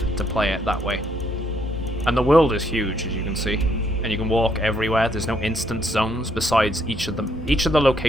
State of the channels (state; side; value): normal; both; correlation 0.71